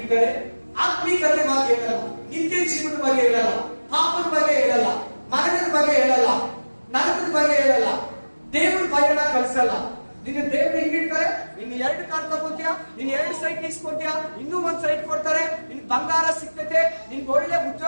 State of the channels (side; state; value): both; inverted; correlation -1.00